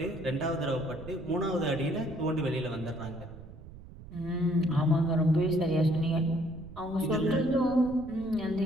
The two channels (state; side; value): noise; right; rumble, 16 dB below the sound